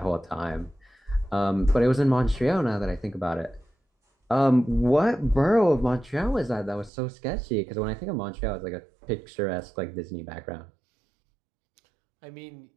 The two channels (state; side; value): drops out; left; at 6.9 s